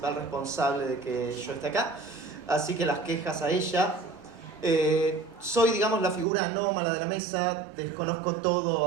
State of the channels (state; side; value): drops out; left; at 6.2 s